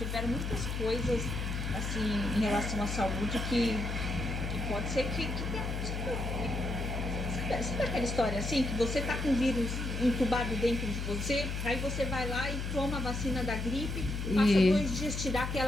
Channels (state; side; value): noise; left; hum, 3 dB below the sound